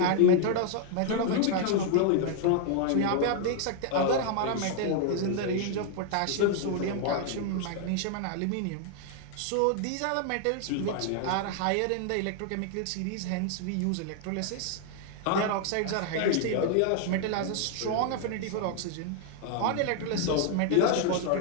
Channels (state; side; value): different; both; correlation 0.00